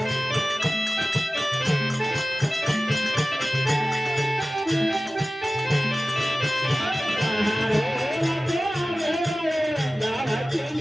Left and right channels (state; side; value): normal; both; correlation 0.96